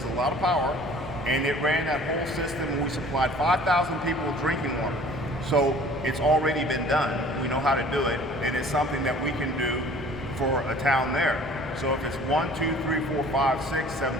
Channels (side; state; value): both; normal; correlation 0.49